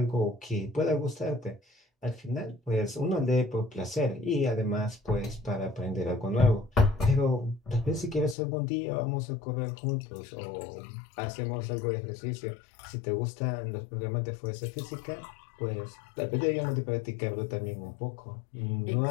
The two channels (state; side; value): drops out; right; at 8.3 s